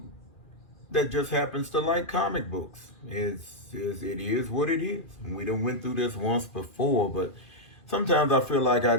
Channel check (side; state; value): right; late; 2.4 ms